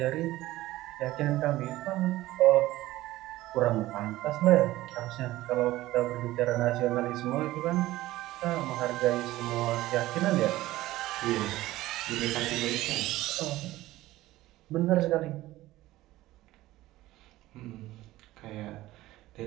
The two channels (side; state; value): left; quieter; 16.7 dB